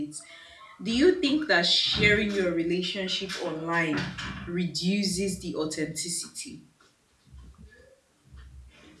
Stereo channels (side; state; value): both; identical; correlation 1.00